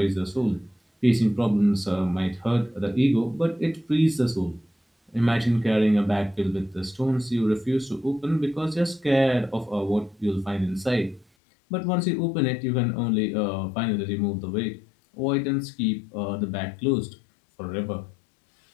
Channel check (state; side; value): drops out; right; at 11.2 s